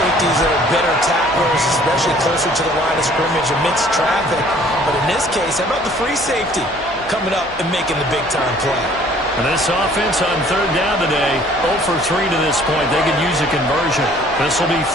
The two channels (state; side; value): normal; both; correlation 0.56